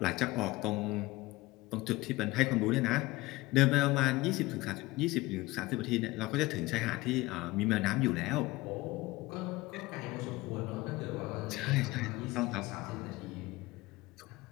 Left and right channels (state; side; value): quieter; right; 20.5 dB